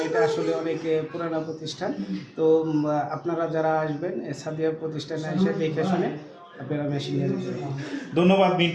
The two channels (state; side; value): identical; both; correlation 1.00